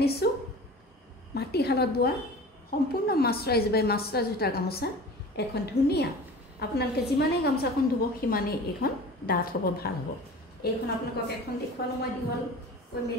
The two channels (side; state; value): both; normal; correlation 0.38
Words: মাটিশালত বোৱা সম্পূৰ্ণ মাস্টাৰাইজ বাই মাস্টাৰাইজ সূতাৰ গামোচা। এখন ধুনীয়া, আপোনালোকে যিমানেই গামোচাখন ধুব সিমানেই এইখন ডাঠ হ'ব, ভাল হ'ব। এইখন আপোনালোকক এখন দেখুৱালো মই দীঘল কৈ